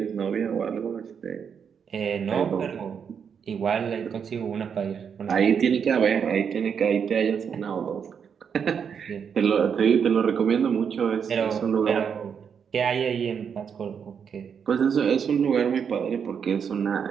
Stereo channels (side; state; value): left; quieter; 7.1 dB